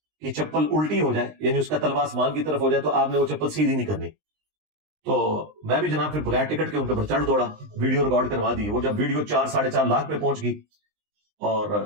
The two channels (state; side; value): late; left; 19 ms